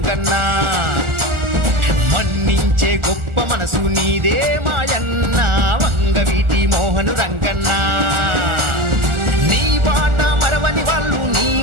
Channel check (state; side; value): late; left; 1.4 ms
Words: మన్నించే గొప్ప మనసు నీదే మాయన్న వంగవీటి మోహను రంగన్న నీ బాట మరవని వాళ్ళు నీ